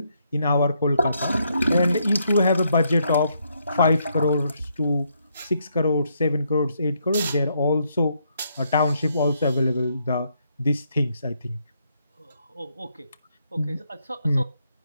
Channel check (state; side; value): inverted; both; correlation -0.75